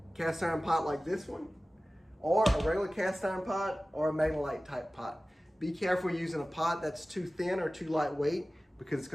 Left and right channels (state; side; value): normal; both; correlation 0.97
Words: cast iron pot like this one, or a regular cast iron pot, or a Magnolite type pot. Be careful using a pot that's too thin or too lightweight, because it's